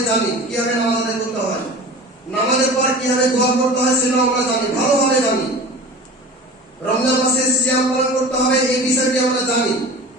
জানি, কিভাবে নামাজ আদায় করতে হয়, নামাজের পর কিভাবে দোয়া করতে হয় সেটাও আমরা জানি, ভালোভাবে জানি। রমজান মাসে সিয়াম পালন করতে হবে, এই বিষয়টি আমরা জানি।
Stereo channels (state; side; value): normal; both; correlation 0.37